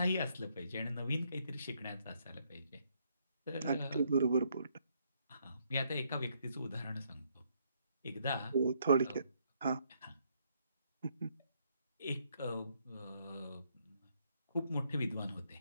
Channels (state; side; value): inverted; both; correlation -0.72